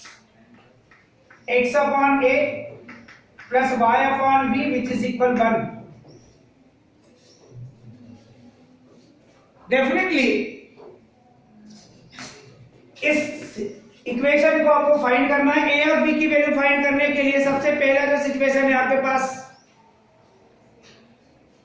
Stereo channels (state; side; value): identical; both; correlation 1.00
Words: x upon a plus y upon b which is equal 1। Definitely इस इक्वेशन को आपको फाइंड करना है। ए और बी की वैल्यू फाइंड करने के लिए सबसे पहला जो सिचुएशन है आपके पास,